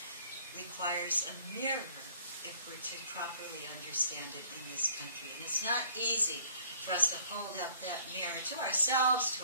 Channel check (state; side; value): inverted; both; correlation -0.59